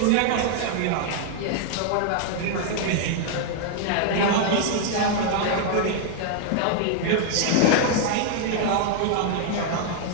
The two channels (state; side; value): different; both; correlation 0.00